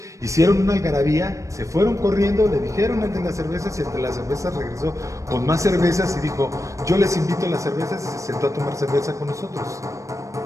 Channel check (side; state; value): left; late; 0.15 ms